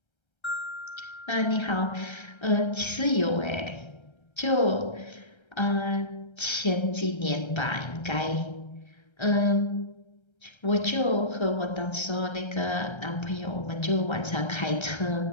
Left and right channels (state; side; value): late; right; 1.3 ms